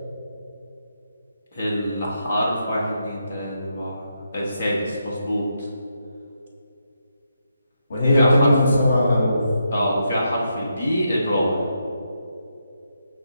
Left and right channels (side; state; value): both; inverted; correlation -0.82